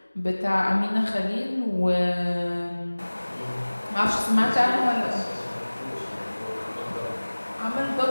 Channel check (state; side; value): inverted; both; correlation -1.00